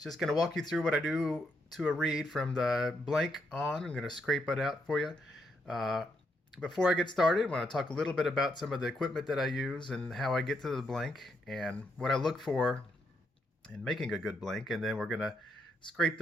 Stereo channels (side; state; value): both; normal; correlation 0.78